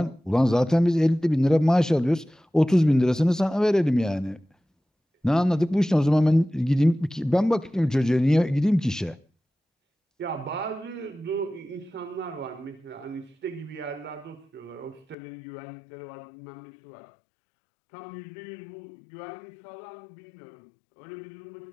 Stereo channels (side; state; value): right; drops out; at 15.2 s